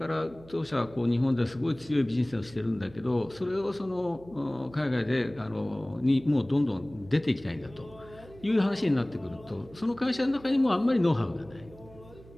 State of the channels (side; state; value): right; noise; hum, 21 dB below the sound